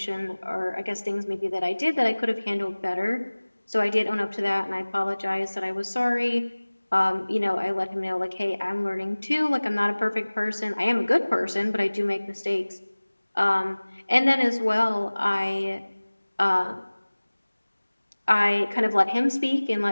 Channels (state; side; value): inverted; both; correlation -1.00